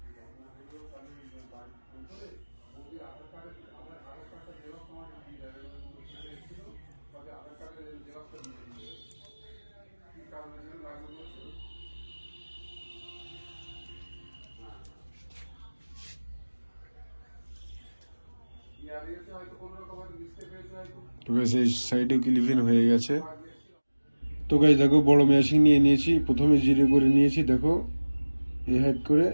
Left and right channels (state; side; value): inverted; both; correlation -1.00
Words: তো গাইস এই সাইডে ক্লিপিং হয়ে গেছে। তো গাইস দেখো বড় মেশিন নিয়ে নিয়েছি। প্রথমে জিরে করে নিয়েছি। দেখো এই হাইড করে